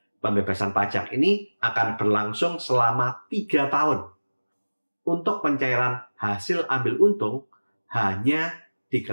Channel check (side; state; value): both; inverted; correlation -1.00